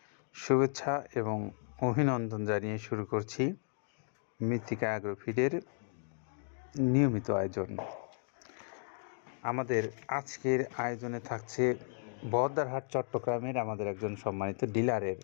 শুভেচ্ছা এবং অভিনন্দন জানিয়ে শুরু করছি মৃত্তিকা অ্যাগ্রোফিডের নিয়মিত আয়োজন। আমাদের আজকের আয়োজনে থাকছে বহদ্দারহাট চট্টগ্রামের আমাদের একজন সম্মানিত ডিলারের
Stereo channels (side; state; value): right; silent; 55 dB below the other